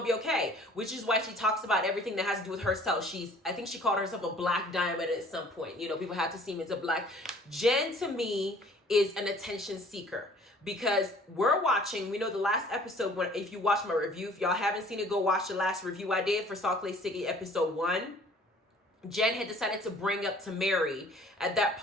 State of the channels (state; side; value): normal; both; correlation 0.53